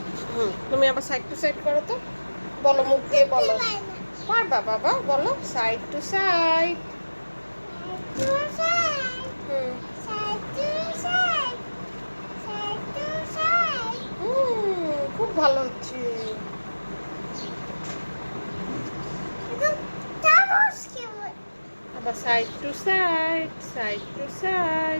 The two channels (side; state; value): both; inverted; correlation -1.00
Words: তুমি আবার সাইড টু সাইড করো তো, বলো মুখ দিয়ে বলো। পারবা বাবা, বলো সাইড টু সাইড। খুব ভালো হচ্ছে। আবার side to side, side to